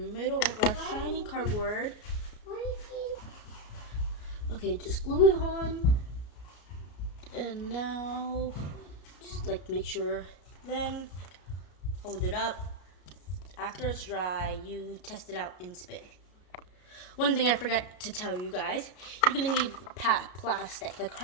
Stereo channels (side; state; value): right; late; 33 ms